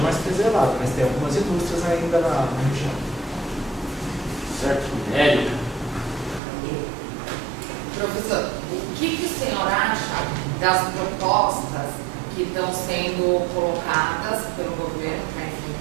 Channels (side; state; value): left; drops out; at 6.4 s